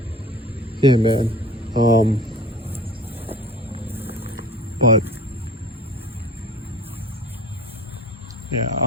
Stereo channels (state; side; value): normal; both; correlation 0.42